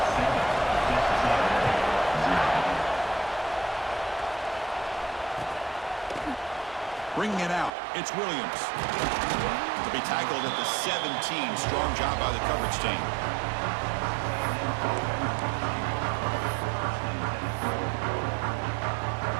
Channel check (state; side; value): drops out; left; at 7.7 s